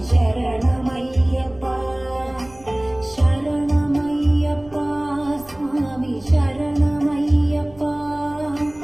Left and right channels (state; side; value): noise; right; rumble, 24 dB below the sound